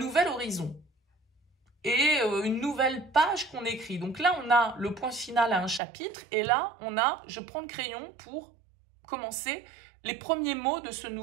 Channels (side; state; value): left; drops out; at 5.8 s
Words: horizon et une nouvelle page qu'on écrit. Donc là, on a le point final à un chapitre, et là, je prends le crayon pour commencer les premiers mots de ce